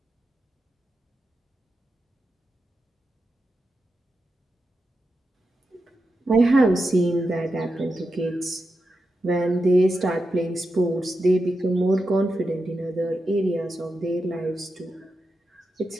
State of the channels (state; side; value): normal; both; correlation 0.88